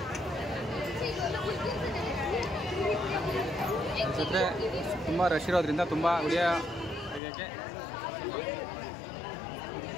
ಜೊತೆ ತುಂಬ ರಶ್ ಇರೋದ್ರಿಂದ ತುಂಬ ವಿಡಿಯೋ ತೆಗಿಯೋಕ್ಕೆ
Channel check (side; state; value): right; drops out; at 7.2 s